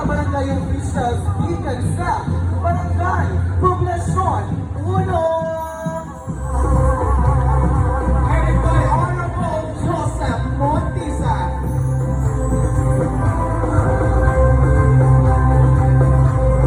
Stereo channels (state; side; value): identical; both; correlation 1.00